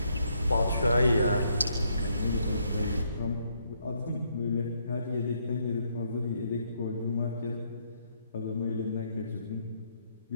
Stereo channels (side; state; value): both; inverted; correlation -0.73